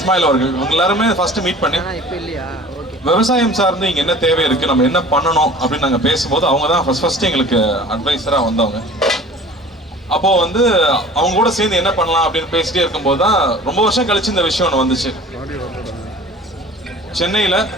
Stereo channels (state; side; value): normal; both; correlation 0.44